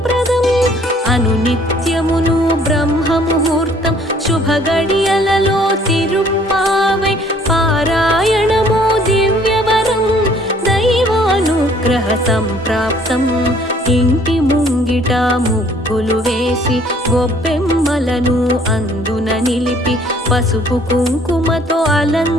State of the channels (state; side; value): normal; both; correlation 0.59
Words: అనునిత్యమును బ్రహ్మ ముహూర్తం శుభ గడియలలో తిరుప్పావై పారాయణము దివ్యవరం దైవానుగ్రహ సంప్రాప్తం ఇంటి ముంగిట ముగ్గులు వేసి గొబ్బెమ్మలను అందున నిలిపి పసుపు కుంకుమతో